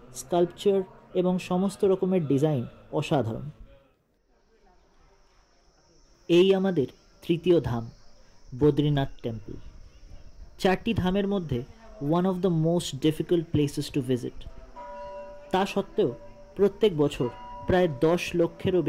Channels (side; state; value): both; identical; correlation 1.00